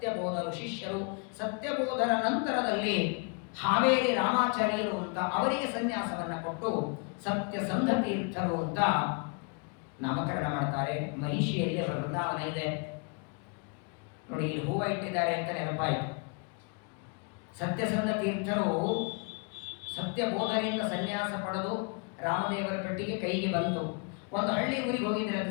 ಶಿಷ್ಯರು. ಸತ್ಯಬೋಧರ ನಂತರದಲ್ಲಿ ಹಾವೇರಿ ರಾಮಾಚಾರ್ಯರು ಅಂತ ಅವರಿಗೆ ಸನ್ಯಾಸವನ್ನ ಕೊಟ್ಟು ಸತ್ಯಸಂಧ ತೀರ್ಥರು ಅಂತ ನಾಮಕರಣ ಮಾಡ್ತಾರೆ. ಮಹಿಷಿಯಲ್ಲಿ ಅವರ ವೃಂದಾವನ ಇದೆ ನೋಡಿ. ಇಲ್ಲಿ ಹೂವ ಇಟ್ಟಿದ್ದಾರೆ ಅಂತ ನೆನಪಾಯಿತು. ಸತ್ಯಸಂಧ ತೀರ್ಥರು ಸತ್ಯಬೋಧರಿಂದ ಸನ್ಯಾಸ ಪಡೆದು ರಾಮದೇವರ ಪೆಟ್ಟಿಗೆ ಕೈಗೆ ಬಂತು. ಒಂದು ಹಳ್ಳಿ ಊರಿಗೆ ಹೋಗಿದ್ದಾರೆ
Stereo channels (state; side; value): quieter; right; 36.0 dB